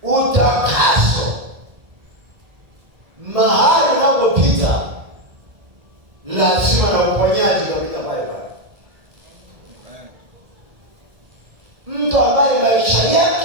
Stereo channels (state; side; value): late; left; 1.7 ms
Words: utakaso mahali unapopita lazima na uponyaji utapita pale pale. Mtu ambaye maisha